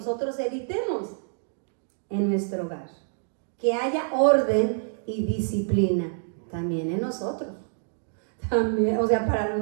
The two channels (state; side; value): silent; left; digital silence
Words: evitemos en nuestro hogar. Que haya orden y disciplina también en nosotros. También, o sea, para